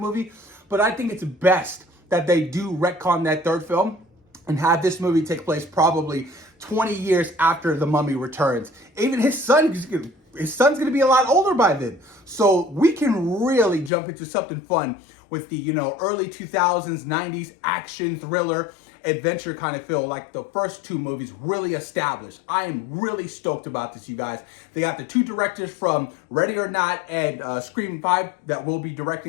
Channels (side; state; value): right; drops out; at 13.9 s